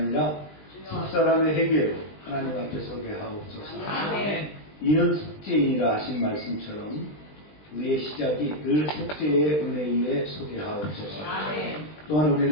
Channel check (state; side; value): late; right; 20 ms